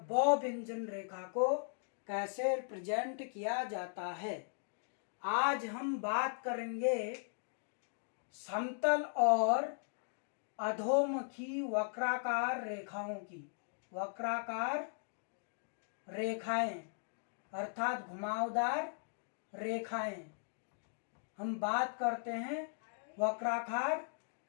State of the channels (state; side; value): silent; right; digital silence